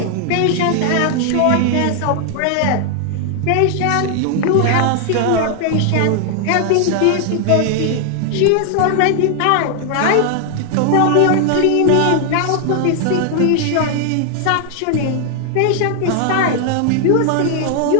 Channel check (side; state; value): both; different; correlation 0.00